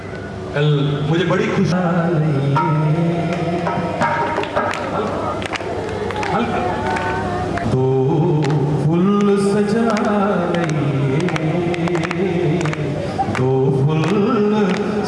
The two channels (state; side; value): identical; both; correlation 1.00